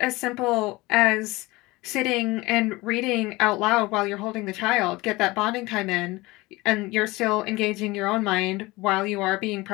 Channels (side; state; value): right; quieter; 21.5 dB